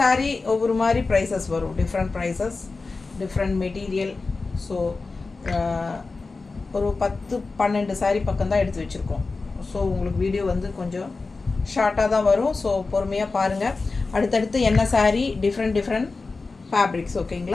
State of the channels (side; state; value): right; quieter; 3.9 dB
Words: ஒவ்வொரு மாதிரி ப்ரைஸஸ் வரும், different prices, different material. So ஒரு 10-12 சாரீ பக்கம் தான் எடுத்து வச்சுருக்கோம். ஸோ உங்களுக்கு வீடியோ வந்து கொஞ்சம் ஷார்ட்டாக தான் வரும். ஸோ பொறுமையாக பாருங்கள். அடுத்தடுத்து என்ன சாரீ, டிஃப்ரெண்ட் ஃபேப்ரிக்ஸ்.